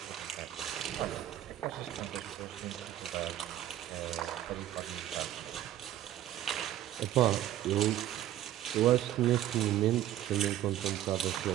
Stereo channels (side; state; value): left; quieter; 12.8 dB